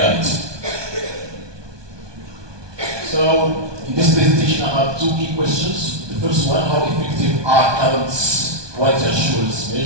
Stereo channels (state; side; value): late; left; 1.2 ms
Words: So, in this presentation, I have two key questions. The first one, how effective are current quality assurance